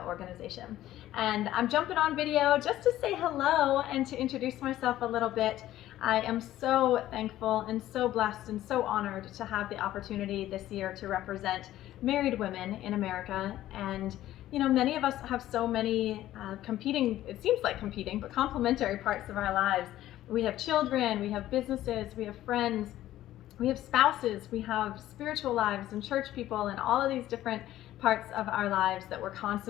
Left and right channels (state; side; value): quieter; right; 13.9 dB